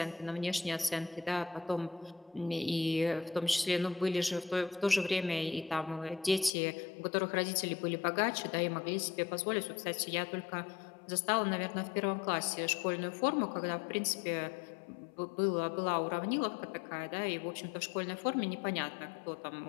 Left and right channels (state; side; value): drops out; right; at 6.5 s